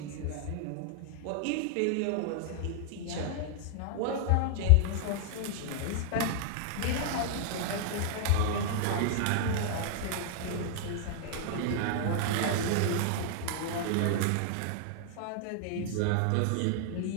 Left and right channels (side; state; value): both; different; correlation 0.00